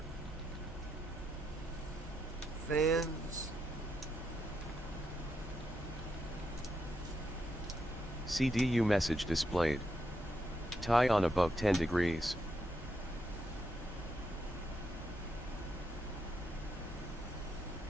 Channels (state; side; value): normal; both; correlation 0.81